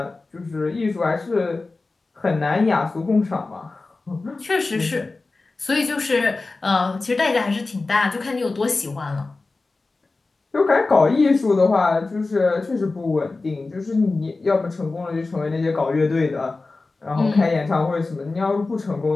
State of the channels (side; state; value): right; quieter; 3.6 dB